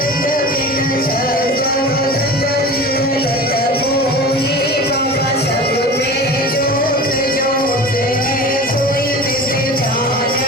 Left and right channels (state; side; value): normal; both; correlation 0.35